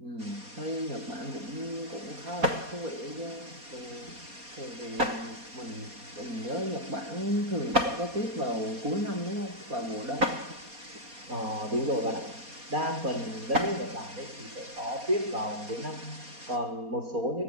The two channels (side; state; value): left; late; 4.2 ms